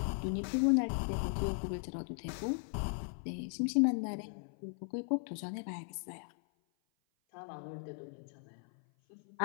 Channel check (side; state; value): right; silent; 53 dB below the other